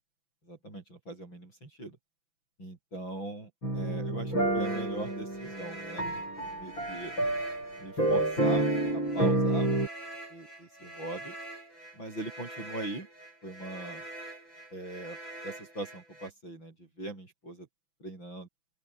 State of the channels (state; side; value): late; right; 6.0 ms